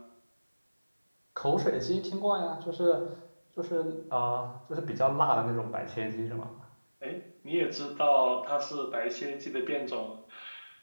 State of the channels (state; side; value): inverted; both; correlation -1.00